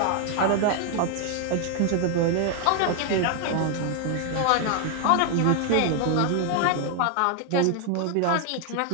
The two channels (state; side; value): different; both; correlation 0.00